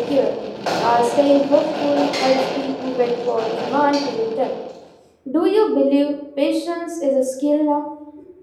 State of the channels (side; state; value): both; identical; correlation 1.00